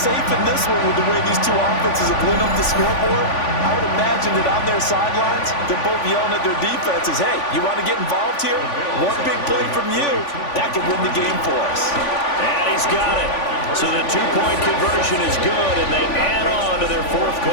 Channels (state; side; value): late; right; 3.5 ms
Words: in this one with the way these two offenses have lit up the scoreboard. I would imagine that on their sidelines, they're both yelling at their defenses, hey, you want to get involved here? One big play from you, that could win the game for us. And he's got it. So the two-point conversion is good, and they add on to their fourth